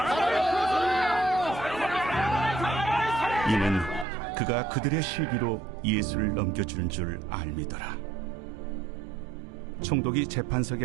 이는 그가 그들의 실기로 예수를 넘겨주는 줄 알미더라. 총독이 재판석에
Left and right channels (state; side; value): drops out; left; at 4.0 s